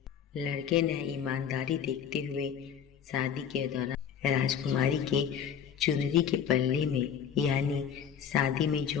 लड़के ने ईमानदारी देखते हुए शादी के दौरान राजकुमारी के चुनरी के पल्ले में, यानी शादी में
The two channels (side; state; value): right; quieter; 8.2 dB